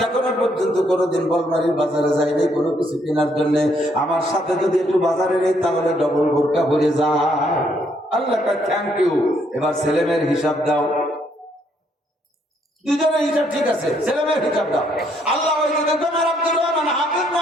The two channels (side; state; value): both; normal; correlation 0.71